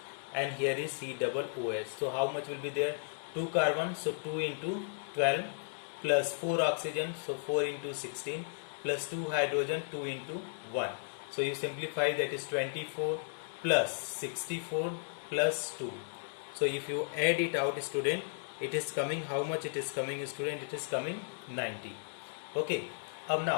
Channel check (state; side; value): silent; right; digital silence